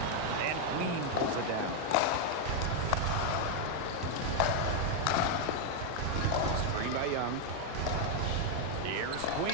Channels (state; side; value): different; both; correlation 0.01